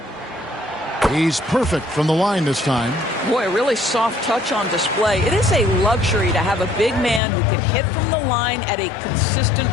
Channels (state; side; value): drops out; right; at 7.2 s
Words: He's perfect from the line this time. Boy, a really soft touch on display. It is a luxury to have a big man who can hit from the line at a consistent